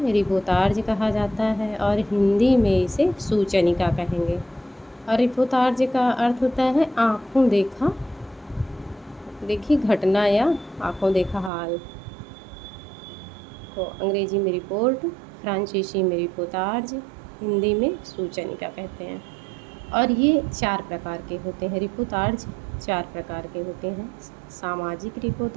रिपोर्टाज कहा जाता है और हिंदी में इसे सूचनिका कहेंगे। और रिपोर्टाज का अर्थ होता है आँखों देखी घटना या आँखों देखा हाल। तो अंग्रेजी में रिपोर्ट, फ्रांसीसी में रिपोर्टाज, हिंदी में सूचनिका कहते हैं। और ये 4 प्रकार के होते हैं। रिपोर्टाज 4 प्रकार के होते हैं। सामाजिक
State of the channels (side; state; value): left; drops out; at 11.5 s